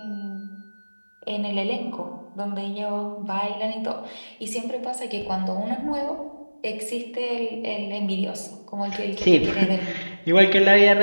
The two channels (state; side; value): inverted; both; correlation -1.00